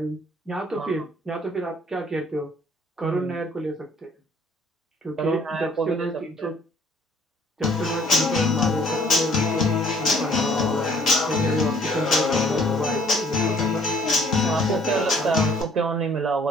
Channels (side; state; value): both; normal; correlation 0.59